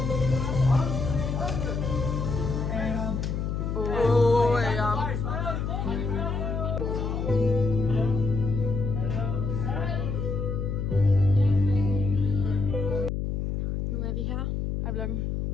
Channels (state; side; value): noise; left; hum, 2 dB below the sound